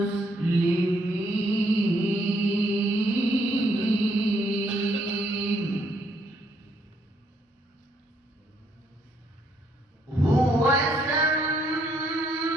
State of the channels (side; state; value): both; normal; correlation 0.71